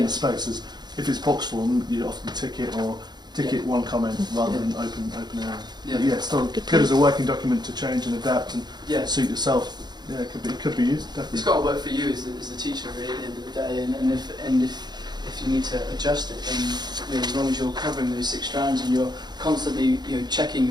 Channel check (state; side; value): late; left; 0.20 ms